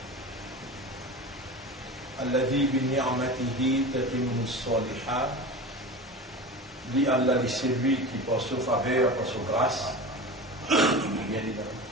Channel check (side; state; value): both; normal; correlation 0.31